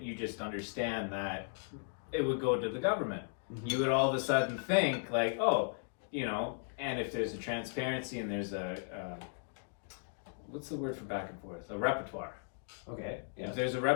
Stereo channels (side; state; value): right; silent; digital silence